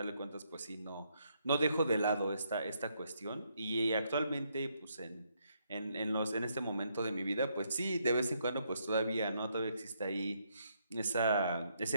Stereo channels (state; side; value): inverted; both; correlation -0.75